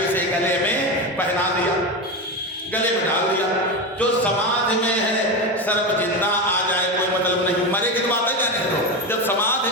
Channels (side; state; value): both; normal; correlation 0.18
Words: गले में पहना दिया, गले में डाल दिया। जो समाधि में है सर्प जिंदा आ जाए कोई मतलब नहीं, मरे की बात है क्या, नहीं तो जब समाधि